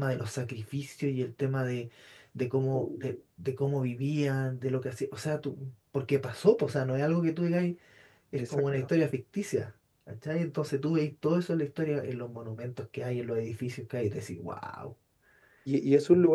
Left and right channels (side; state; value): both; identical; correlation 1.00